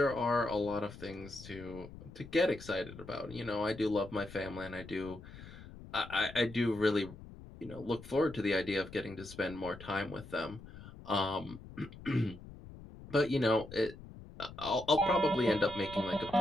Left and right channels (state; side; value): noise; left; rumble, 16 dB below the sound